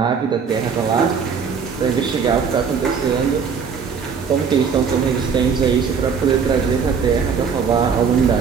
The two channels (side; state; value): left; quieter; 6.2 dB